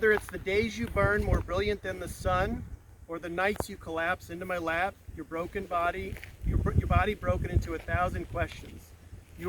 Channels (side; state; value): both; identical; correlation 1.00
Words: it's the days you burn more brilliant than the sun, or the nights you collapse into my lap, your body broken into 1,000 questions.